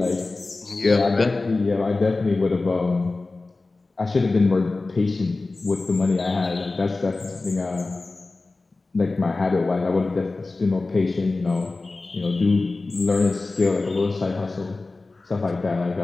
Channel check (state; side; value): quieter; right; 3.4 dB